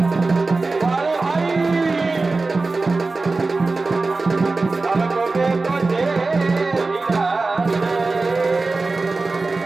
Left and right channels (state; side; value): quieter; left; 3.6 dB